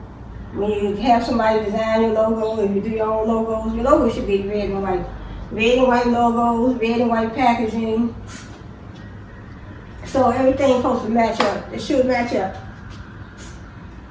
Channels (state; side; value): identical; both; correlation 1.00